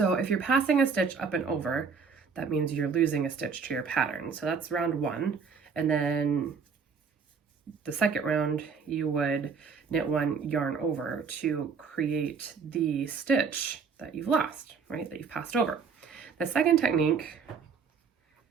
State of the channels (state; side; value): quieter; left; 5.7 dB